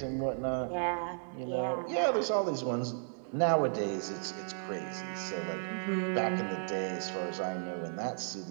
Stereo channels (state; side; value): silent; left; digital silence